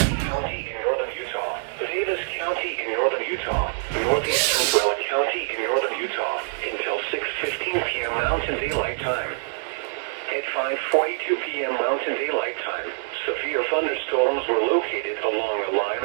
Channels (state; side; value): silent; left; digital silence